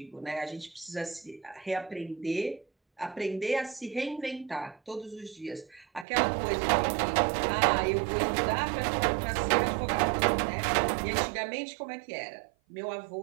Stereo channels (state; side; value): drops out; left; at 6.1 s